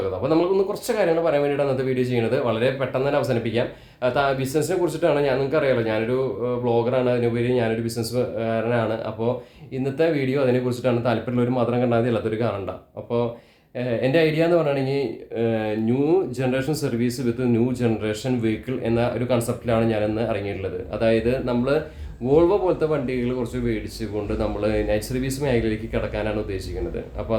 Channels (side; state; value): both; identical; correlation 1.00